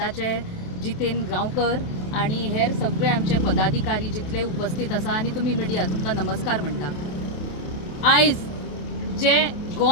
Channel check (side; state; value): right; late; 28 ms